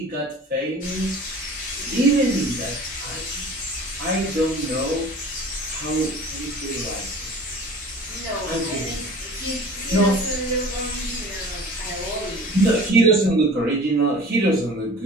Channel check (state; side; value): normal; both; correlation 0.43